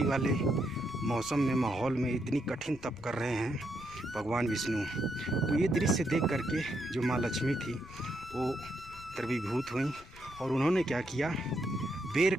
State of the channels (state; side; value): noise; left; rumble, 19 dB below the sound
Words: वाले मौसम में, माहौल में इतनी कठिन तप कर रहे हैं भगवान विष्णु, तो ये दृश्य देख करके जो माँ लक्ष्मी थी वो द्रवीभूत हुई और उन्होंने क्या किया, बेर